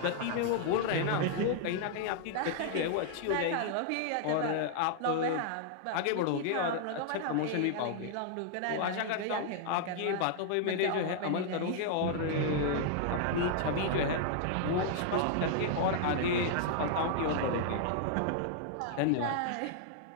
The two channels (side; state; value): both; different; correlation -0.01